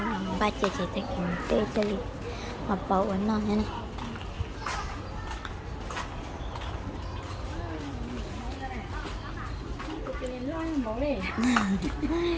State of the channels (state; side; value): identical; both; correlation 1.00